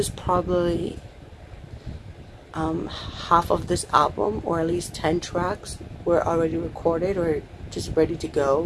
probably half of this album, or at least 10 tracks were already recorded or just ready to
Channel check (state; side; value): identical; both; correlation 1.00